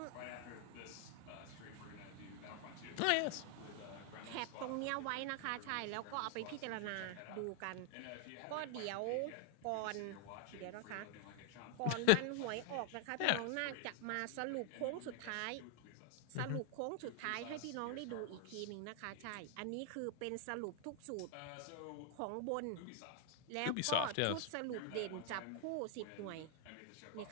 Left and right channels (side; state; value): both; different; correlation 0.00